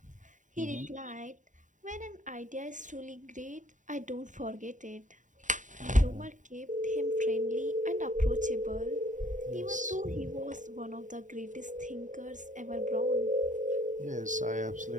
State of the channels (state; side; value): late; left; 0.36 ms